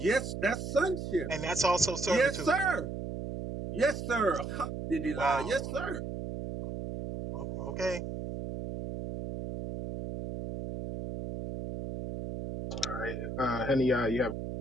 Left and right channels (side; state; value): right; noise; hum, 6 dB below the sound